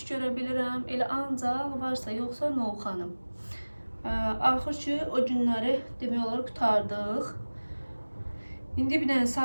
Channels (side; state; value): both; inverted; correlation -1.00